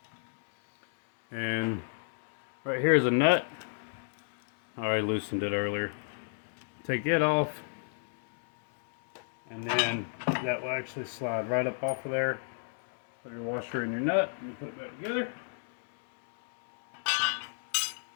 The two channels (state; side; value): silent; right; digital silence